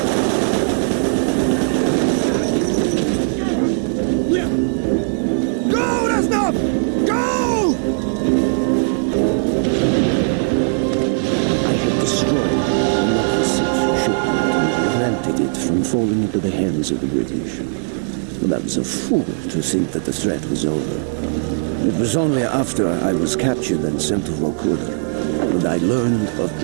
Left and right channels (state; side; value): silent; left; digital silence